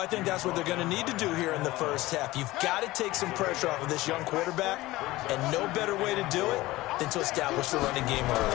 I think that's what they're going to need to do here in the first half. You've got to take some pressure off of this young quarterback, and no better way to do it than to establish the running game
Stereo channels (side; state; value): right; quieter; 18.6 dB